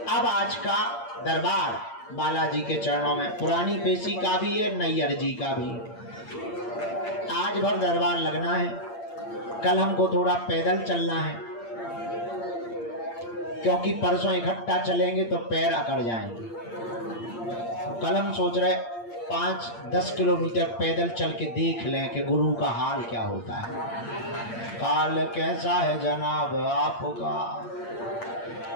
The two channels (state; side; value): late; right; 8.7 ms